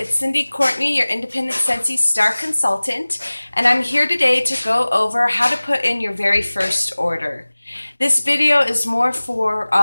Cindy Courtney, your independent Scentsy star consultant, and I'm here today to go over how to put in your very first order. This video is more for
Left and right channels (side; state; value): both; inverted; correlation -1.00